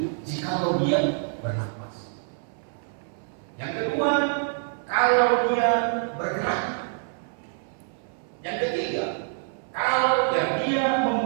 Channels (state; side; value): silent; left; 59 dB below the other